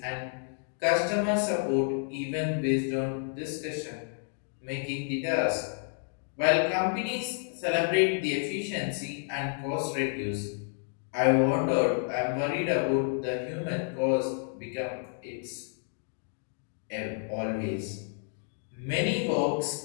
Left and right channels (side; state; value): right; silent; 57 dB below the other